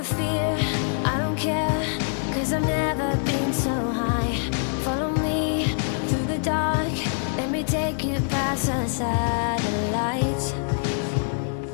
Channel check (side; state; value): right; silent; 62 dB below the other